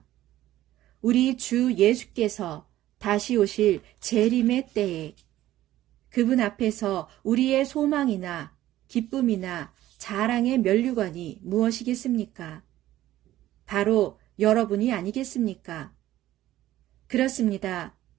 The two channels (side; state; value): left; quieter; 14.4 dB